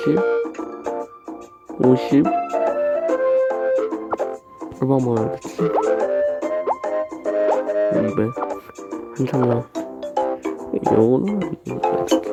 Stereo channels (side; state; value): both; identical; correlation 1.00